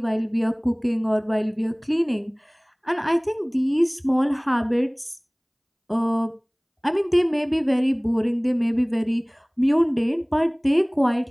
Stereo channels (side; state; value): both; identical; correlation 1.00